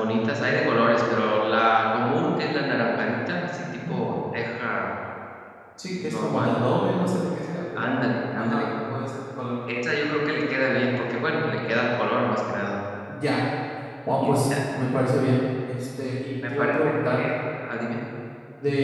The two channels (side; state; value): both; identical; correlation 1.00